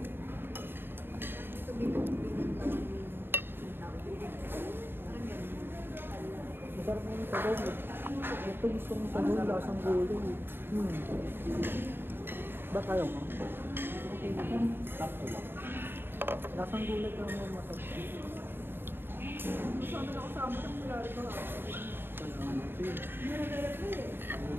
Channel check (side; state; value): left; late; 0.10 ms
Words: Masarap na yung sabaw. Ito gusto mong sabaw, lasang gulay. Ba tayo mo? Sakto lang. Lasang gulay ka mo masarap. Sana na ako sa amo ng mulari ko.